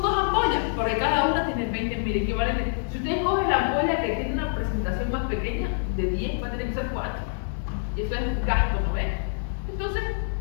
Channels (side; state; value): right; silent; digital silence